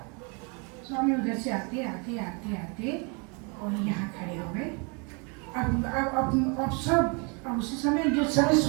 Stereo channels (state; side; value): quieter; left; 33.7 dB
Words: स्वामी उधर से आते आते आते आते और यहाँ खड़े हो गए। अब सब उसी समय, जिस समय